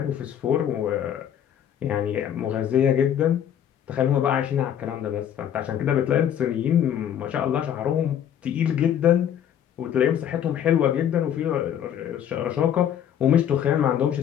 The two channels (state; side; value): quieter; right; 9.8 dB